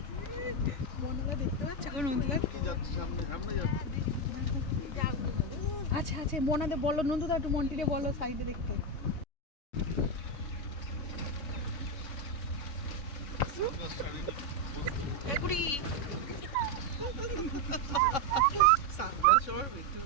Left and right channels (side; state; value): right; late; 3.6 ms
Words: মনারা দেখতে পাচ্ছে এখন নন্দুদা। আচ্ছা আচ্ছা, মনাদের বলো নন্দুদা, একটু মন্টিরে বলো সাইডে দেখতে। সানগ্লাস